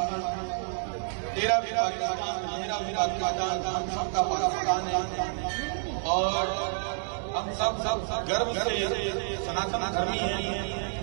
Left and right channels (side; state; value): left; silent; digital silence